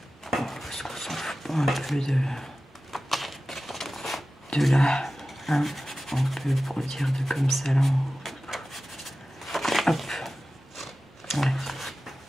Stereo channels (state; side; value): normal; both; correlation 0.95